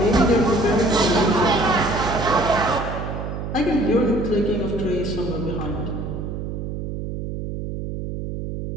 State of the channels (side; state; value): right; noise; hum, 6 dB below the sound